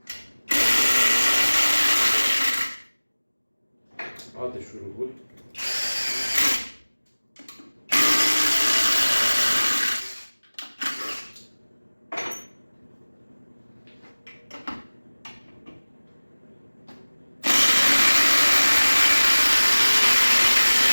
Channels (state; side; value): inverted; both; correlation -1.00